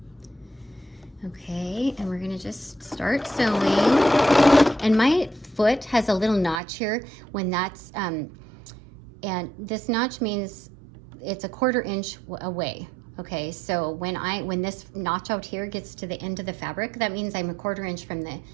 Okay, and we're gonna just start sewing. And my foot has a little notch here when that's, and this notch means it's 1/4 inch away. Okay, so when this notch out here gets to the end of the fabric, that means I'm 1/4 inch from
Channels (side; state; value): left; drops out; at 6.6 s